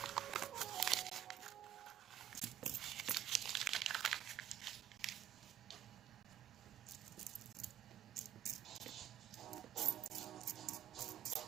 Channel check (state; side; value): quieter; left; 11.1 dB